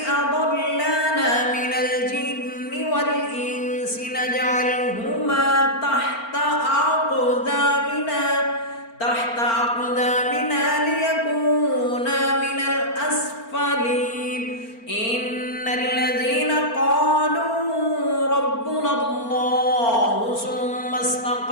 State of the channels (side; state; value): right; late; 4.4 ms